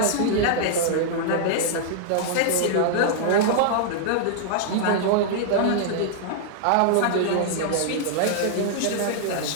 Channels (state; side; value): different; both; correlation -0.01